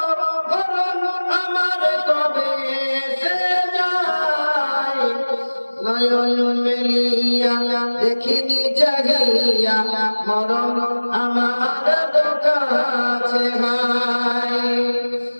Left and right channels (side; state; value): both; inverted; correlation -1.00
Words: মরণ আমার কবে এসে যায়। নয়ন মেলিয়া দেখিনি জাগিয়া, মরণ আমার কাছে নাই।